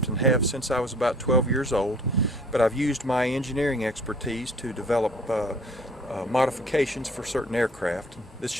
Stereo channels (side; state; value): both; normal; correlation 0.54